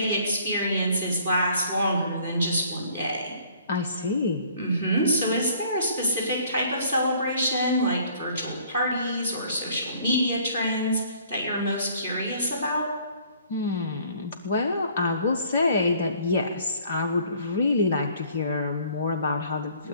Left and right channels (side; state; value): both; inverted; correlation -0.57